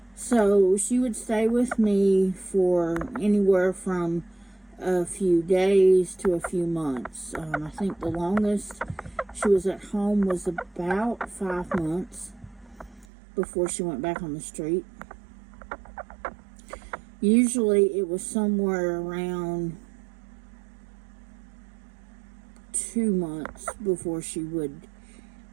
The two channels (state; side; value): drops out; left; at 13.1 s